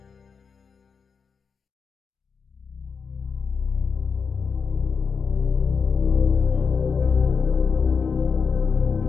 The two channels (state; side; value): quieter; right; 5.6 dB